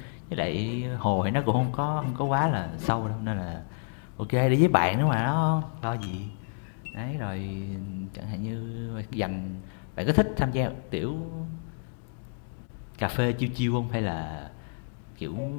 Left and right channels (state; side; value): silent; right; digital silence